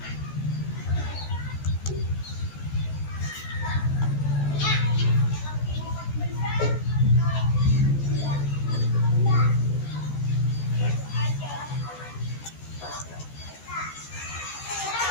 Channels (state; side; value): late; right; 14 ms